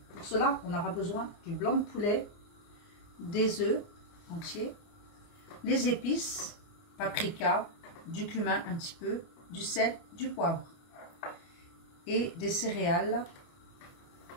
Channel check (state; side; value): late; right; 29 ms